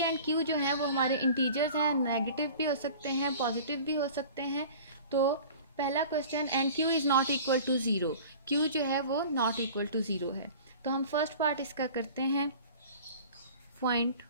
एंड q जो हैं वो हमारे इंटीजर्स हैं, नेगेटिव भी हो सकते हैं, पॉजिटिव भी हो सकते हैं। तो पहला question, and q is not equal to 0, q जो है वो नॉट इक्वल टू 0 है। तो हम फर्स्ट पार्ट इसका करते हैं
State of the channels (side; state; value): both; inverted; correlation -0.42